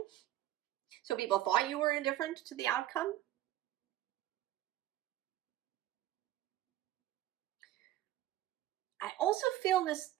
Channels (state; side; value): quieter; left; 14.0 dB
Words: So people thought you were indifferent to the outcome. I also feel that